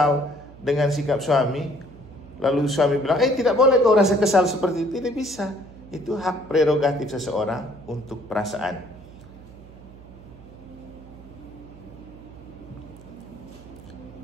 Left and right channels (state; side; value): noise; right; hum, 20 dB below the sound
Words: dengan sikap suami, lalu suami bilang, tidak boleh kau rasa kesal seperti itu. Tidak bisa. Itu hak prerogatif seseorang untuk perasaan.